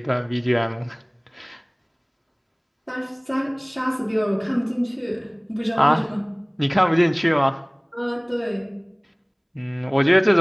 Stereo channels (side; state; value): both; identical; correlation 1.00